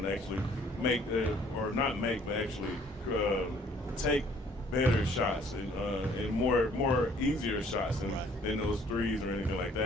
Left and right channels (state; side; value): normal; both; correlation 0.59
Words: actually take better shots and more easier shots than those threes or anything like